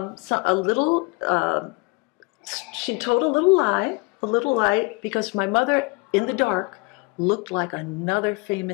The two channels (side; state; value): right; quieter; 27.1 dB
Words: little lie, because my mother, in the dark, looked like another